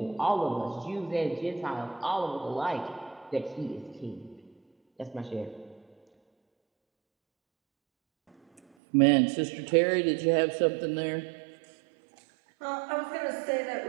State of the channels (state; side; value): drops out; left; at 8.6 s